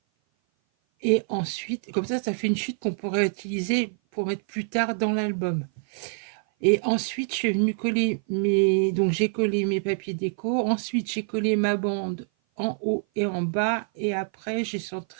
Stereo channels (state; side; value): silent; left; 56 dB below the other